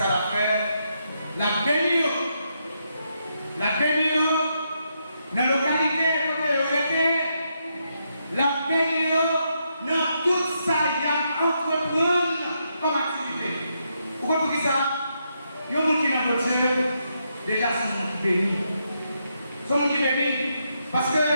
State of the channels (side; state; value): both; inverted; correlation -0.80